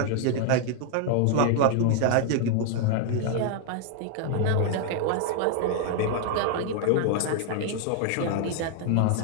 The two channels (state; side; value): different; both; correlation 0.00